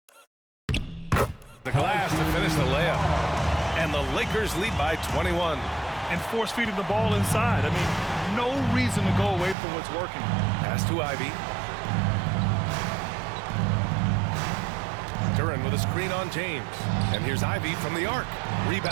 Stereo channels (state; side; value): drops out; left; at 9.6 s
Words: The glass to finish the layup. And the Lakers lead by 21. And force feeding the ball inside. I mean, no reason to go away from what's working. Pass to Ivy. Duran with a screen on James. And here's Ivy from the arc.